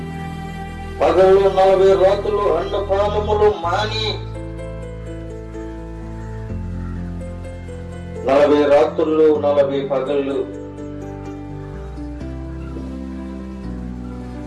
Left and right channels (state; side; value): identical; both; correlation 1.00